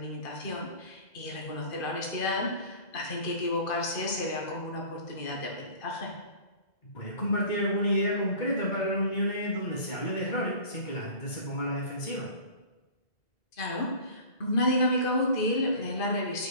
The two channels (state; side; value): late; right; 2.0 ms